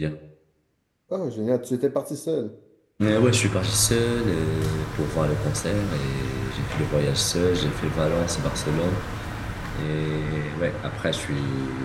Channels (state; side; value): identical; both; correlation 1.00